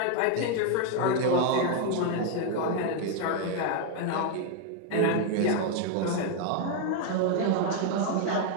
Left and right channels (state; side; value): different; both; correlation 0.01